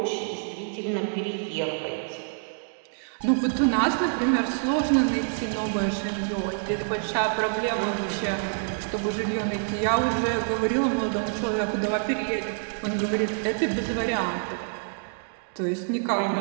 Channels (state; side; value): silent; left; digital silence